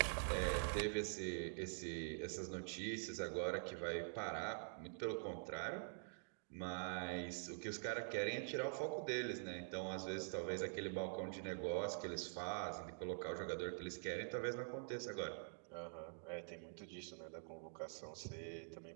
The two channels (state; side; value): silent; left; digital silence